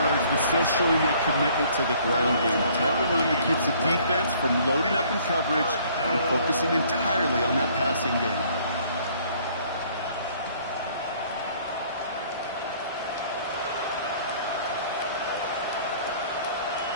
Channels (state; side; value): inverted; both; correlation -0.58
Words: but still showing that commitment to the ground game. The type of run that keeps the defense from loading up in coverage and focusing entirely on that passing game.